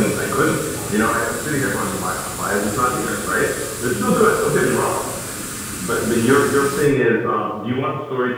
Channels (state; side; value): identical; both; correlation 1.00